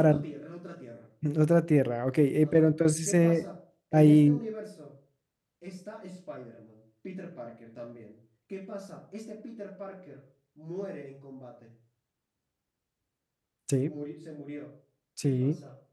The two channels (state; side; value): identical; both; correlation 1.00